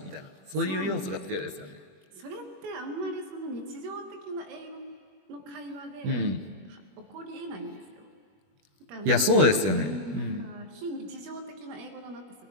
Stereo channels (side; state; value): left; late; 21 ms